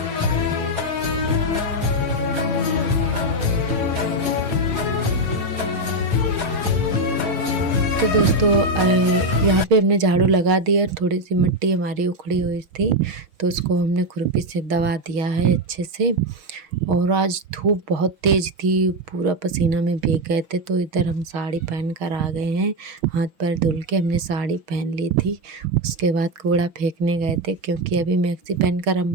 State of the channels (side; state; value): left; late; 6.0 ms